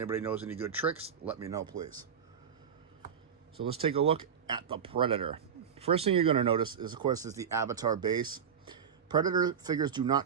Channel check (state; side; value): quieter; left; 7.5 dB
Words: knows any good tricks, let me know, please. So let's take a look at the Predator. First thing you're going to notice is, of course, is the Avatar base. Predator figures do